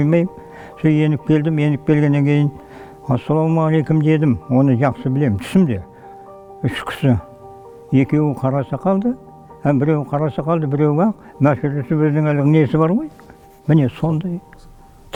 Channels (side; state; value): both; identical; correlation 1.00